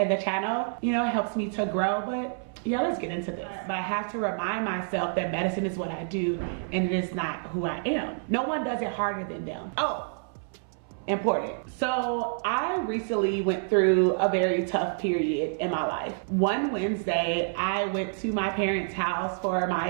the channel. You know, it helps me to grow, but yeah, let's get into this. But I have to remind myself that medicine is what I do and it is not who I am. No one does it harder than them. Oh, important. So I recently went through a very tough period in my life. One Wednesday, I went to my parents' house for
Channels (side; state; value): left; silent; 59 dB below the other